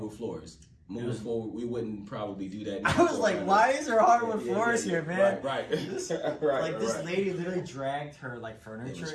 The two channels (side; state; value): both; identical; correlation 1.00